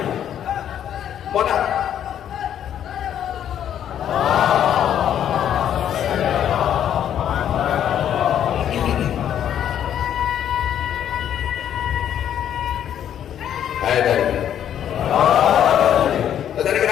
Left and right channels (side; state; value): right; quieter; 10.0 dB